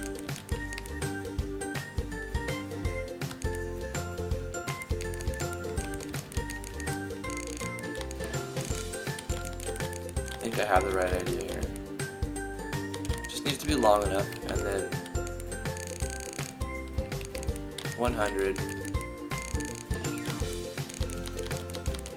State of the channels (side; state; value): both; identical; correlation 1.00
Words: I think I have the right idea here. Just needs to be long enough, and then 100.